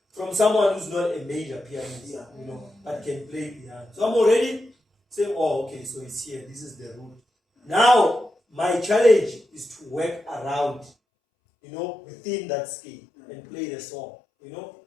from someone who's not a major pianist, but can play piano. So I'm already saying, okay, so it's here. This is the root. Now my challenge is to work around, within that scale and play the song, in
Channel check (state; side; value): drops out; right; at 10.9 s